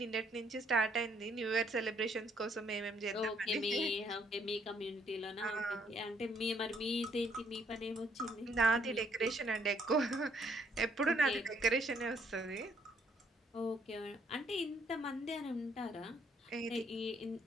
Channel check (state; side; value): normal; both; correlation 0.68